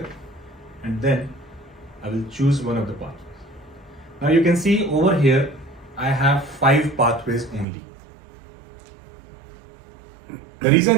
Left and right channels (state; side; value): drops out; left; at 7.7 s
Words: and then I will choose one of the pathways. Now you can see over here, I have 5 pathways only. The reason